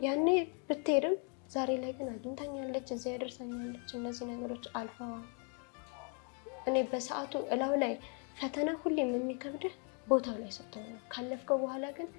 ያኔ ብትሄድም ዛሬ ላይ ግን አግኝታኛለች፣ እዚያ ያደርሳኛለች። እነዚህ ነገሮች አልፈዋል። እኔ በሰዓቱ እላው ላይ ፈተና ሁሌም የሚከብድህ ቦታው ላይ ስትሆን ነው። ካለፍከው በኋላ ግን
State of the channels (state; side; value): quieter; right; 38.8 dB